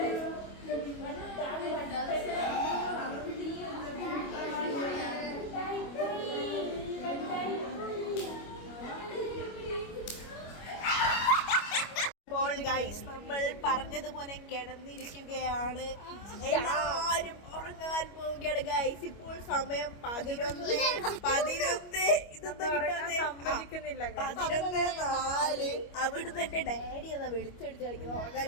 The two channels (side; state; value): right; late; 25 ms